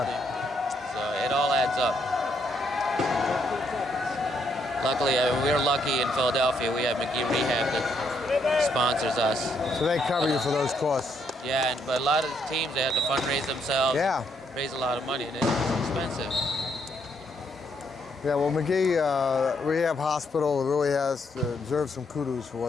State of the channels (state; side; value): normal; both; correlation 0.74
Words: So it all adds up. Luckily, we're lucky in Philadelphia. We have McGee Rehab that sponsors us. So they cover you for those costs. Yeah, but a lot of teams, they have to fundraise themselves. Yeah. Raise a lot of money, and it's expensive. Yeah, well, McGee Rehab Hospital really deserves some kudos for